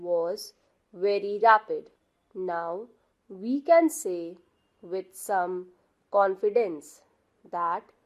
very rapid. Now we can say with some confidence that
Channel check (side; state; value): both; identical; correlation 1.00